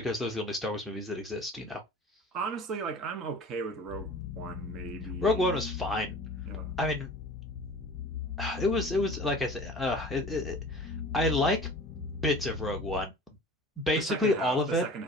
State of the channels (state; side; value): normal; both; correlation 0.41